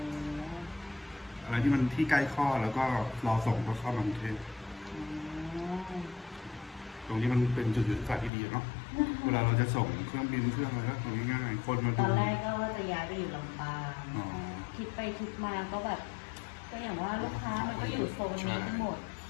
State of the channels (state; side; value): drops out; right; at 8.3 s